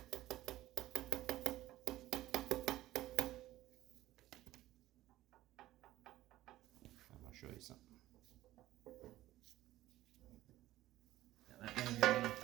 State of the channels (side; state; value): left; quieter; 15.4 dB